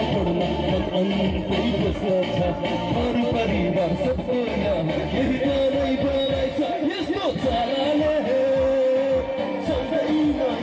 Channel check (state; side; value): identical; both; correlation 1.00